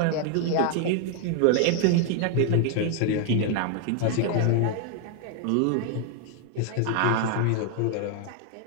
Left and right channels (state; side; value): different; both; correlation 0.00